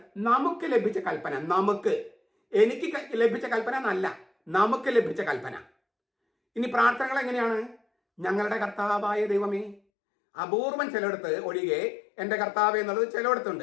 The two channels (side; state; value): right; drops out; at 9.8 s